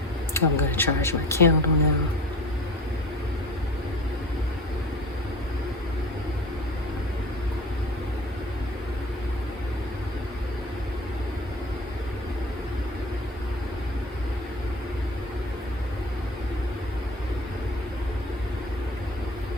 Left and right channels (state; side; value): normal; both; correlation 0.38